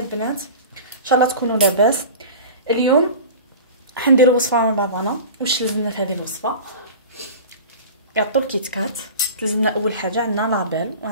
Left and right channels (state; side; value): inverted; both; correlation -0.35